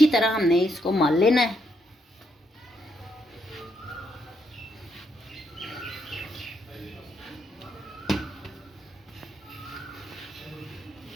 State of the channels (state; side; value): normal; both; correlation 0.77